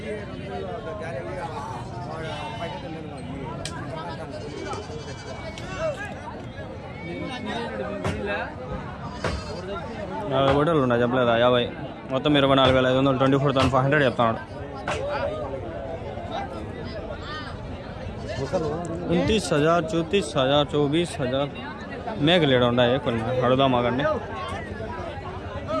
$50 ఉన్నాయి చెప్పలేదా? 50 మొత్తం 24,500 24,500 చెప్తాడు. 29,000 34,000 24,000 మేకలేడు ఉన్నాయి కొన్ని. అడుగుదాం ఆగండి.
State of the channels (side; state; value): both; identical; correlation 1.00